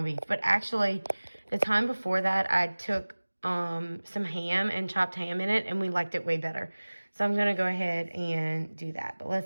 beef. But actually, the time before that, I took some ham and chopped ham in it, and we liked it way better. So I'm going to go ahead and do that. But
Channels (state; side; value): inverted; both; correlation -1.00